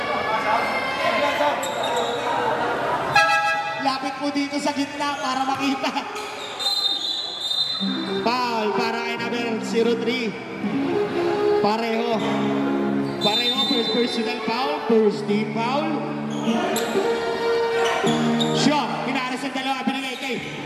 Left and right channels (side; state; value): both; identical; correlation 1.00